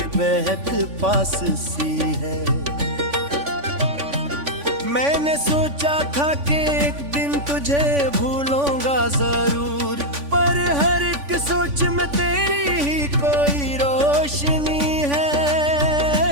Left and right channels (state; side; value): late; left; 3.5 ms